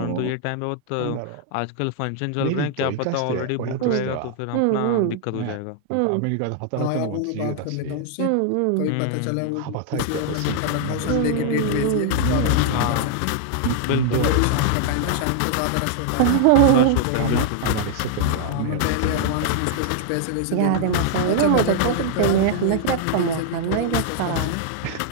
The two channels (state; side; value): different; both; correlation -0.01